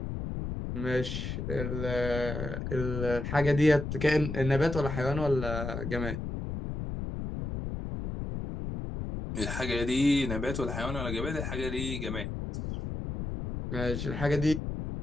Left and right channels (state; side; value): noise; left; rumble, 5 dB below the sound